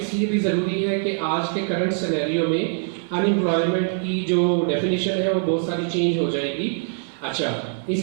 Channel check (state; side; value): silent; left; 63 dB below the other